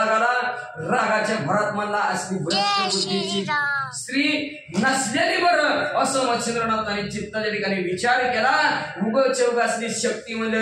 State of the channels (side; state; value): both; identical; correlation 1.00